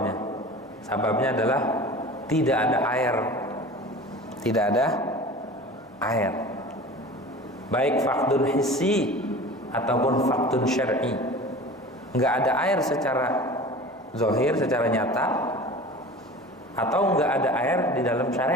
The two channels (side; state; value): both; normal; correlation 0.38